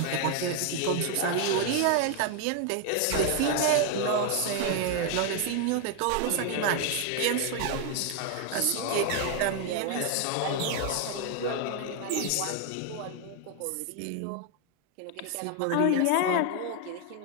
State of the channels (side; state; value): both; different; correlation 0.00